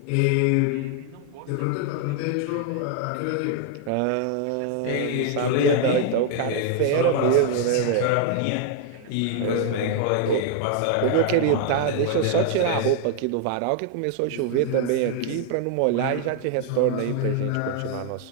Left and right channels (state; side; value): different; both; correlation 0.00